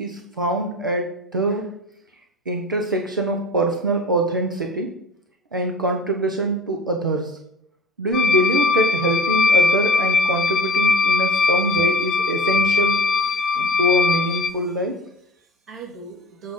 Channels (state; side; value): normal; both; correlation 0.41